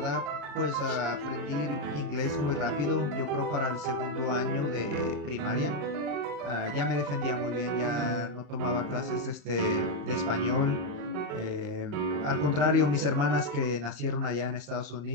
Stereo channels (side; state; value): left; late; 34 ms